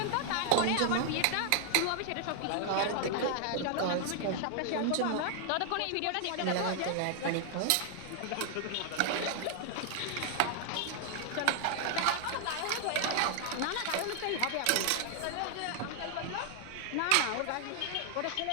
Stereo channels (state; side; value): different; both; correlation 0.00